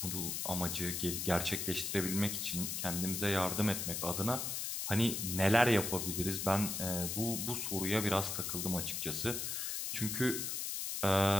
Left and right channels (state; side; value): noise; left; hiss, 2 dB below the sound